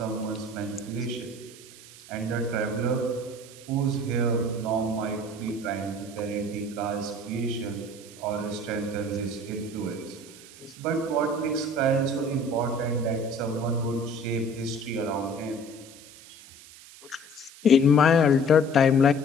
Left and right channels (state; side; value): noise; right; hiss, 19 dB below the sound